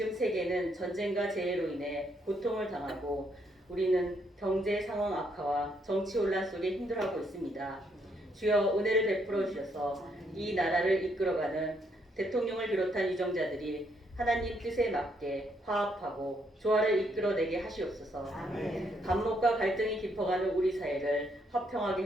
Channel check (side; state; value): both; normal; correlation 0.73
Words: 세계는 전쟁과 재해로 인해 고통을 당하고 우리는 경제 상황 악화와 정치 혼란 속에 힘들어하고 있습니다. 주여 은혜를 베풀어 주셔서 이 나라를 이끌어가는 대통령을 비롯한 유정자들이 하나님 뜻에 맞게 화합하고 조화를 이끌어내게 하시옵소서. 반목과 갈등이 깊어가는 우리 사회를 화평하게